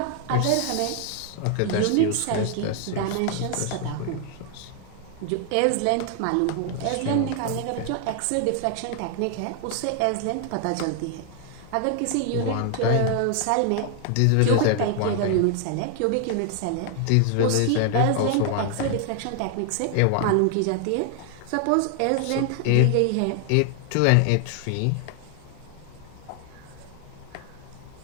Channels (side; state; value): both; different; correlation 0.00